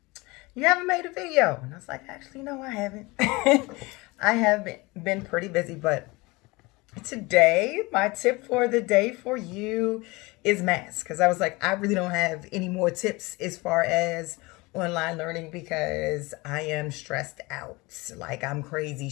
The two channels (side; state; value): right; quieter; 23.6 dB